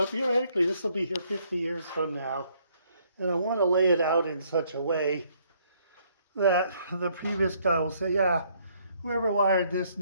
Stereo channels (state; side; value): inverted; both; correlation -0.67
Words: this will be here 50 years from now. And I want to lay it out in such a way that the previous guy will say, yeah, whoever wired this